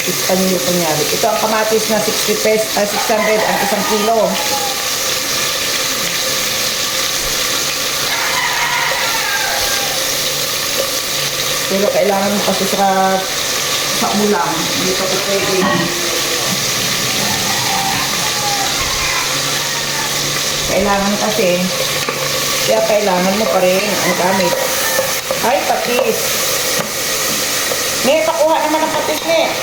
Espanyol kunyari. Ito ang kamatis na 60 pesos, 600 ang isang kilo. Pero kailangan mo kasi sa ulam. Hindi ka po pwede. Kailangan kasi, kaya kailangan mo pa rin ang gamit. Ay, patis. May pakuha naman ang patis, ne.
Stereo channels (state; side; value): noise; right; rumble, 24 dB below the sound